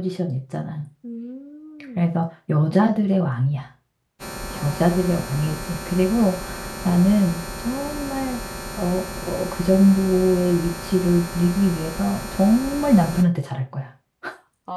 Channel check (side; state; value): both; identical; correlation 1.00